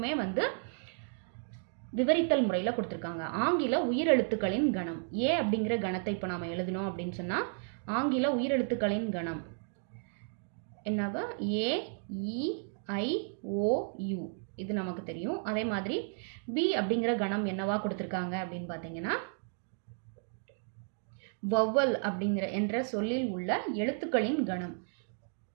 விவரித்தல் முறையில் கொடுத்திருக்காங்க. ஆங்கில உயிரெழுத்துக்களின் கணம் A அப்படிங்கிற கணத்தை இப்போ நாம எழுதணும் அப்படின்னு சொன்னா ஆங்கில உயிரெழுத்துக்களின் கணம் என்னவா AEIOU இது நமக்கு தெரியும். அதே மாதிரி B அப்படிங்கிற கணம் என்னவா கொடுத்திருக்காங்க அப்படின்னு பார்த்தீங்கன்னா வவ்வல் அப்படிங்கிற என்ற சொல்லில் உள்ள எழுத்துக்களின் கணம்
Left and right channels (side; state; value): left; silent; 56 dB below the other